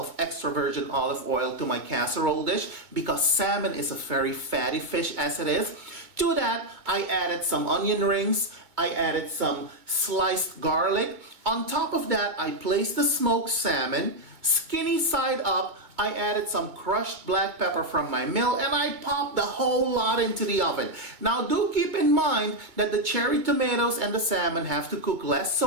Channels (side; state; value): left; late; 2.2 ms